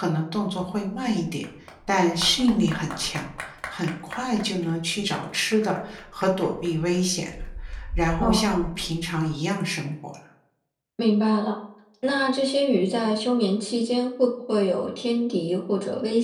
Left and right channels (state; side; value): identical; both; correlation 1.00